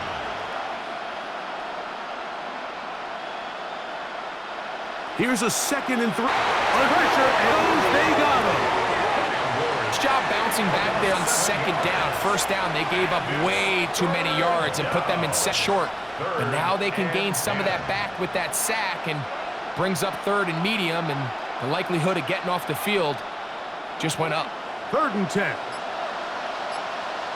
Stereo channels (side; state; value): both; identical; correlation 1.00